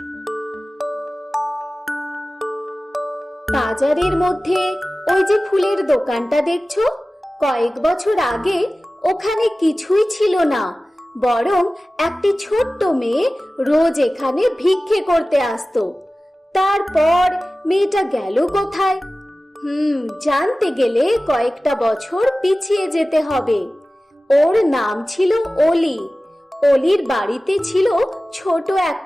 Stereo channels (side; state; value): both; normal; correlation 0.96